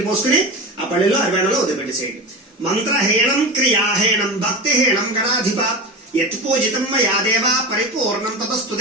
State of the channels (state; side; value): normal; both; correlation 0.26